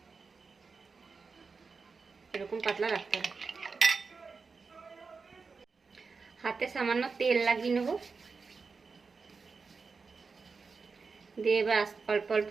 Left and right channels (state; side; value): quieter; left; 4.7 dB